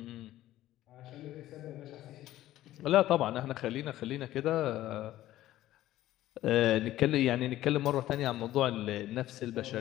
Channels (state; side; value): quieter; right; 14.4 dB